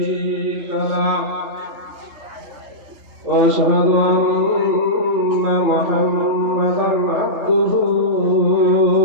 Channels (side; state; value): left; late; 3.3 ms